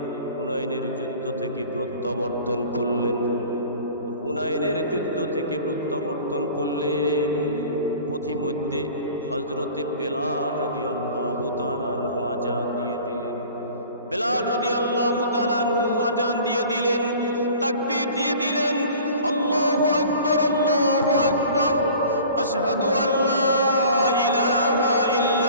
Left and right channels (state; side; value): inverted; both; correlation -0.45